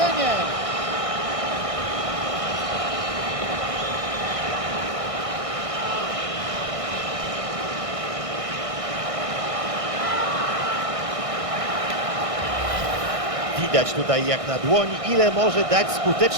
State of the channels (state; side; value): late; left; 1.6 ms